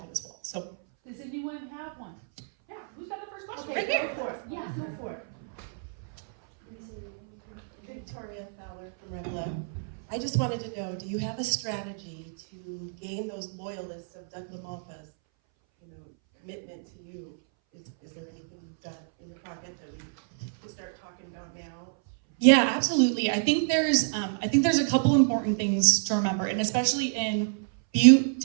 as well. So does anyone have one? yeah, who's got the first question? Okay, Right there. go for it. Yeah, go for it. Victoria Fowler from Redlow. I just wanted to know, do you have a strategy to gain those loyalists of Doug LaMalfa's, commitment to you? Is there anything you've got in the pocket that we can start talking about now? Yeah, absolutely. I think there's a couple important things to remember, and especially in Butte,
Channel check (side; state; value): left; silent; 59 dB below the other